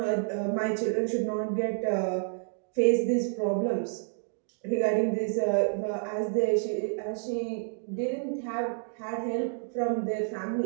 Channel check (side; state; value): left; silent; digital silence